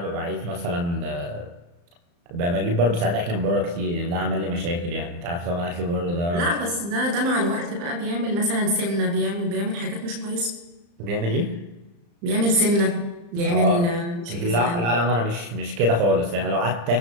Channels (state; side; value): late; left; 35 ms